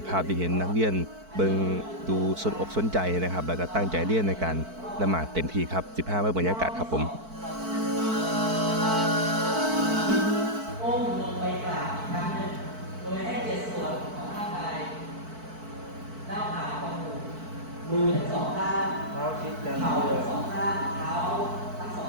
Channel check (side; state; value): left; late; 4.5 ms